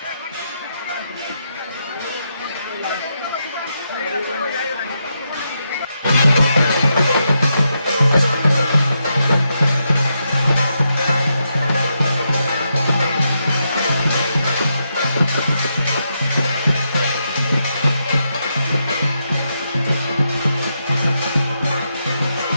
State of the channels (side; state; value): both; inverted; correlation -0.83